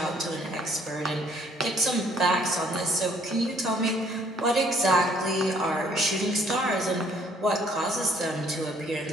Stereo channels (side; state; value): both; normal; correlation 0.62